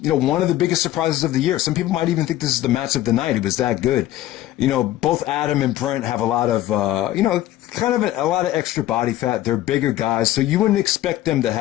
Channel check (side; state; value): right; quieter; 14.3 dB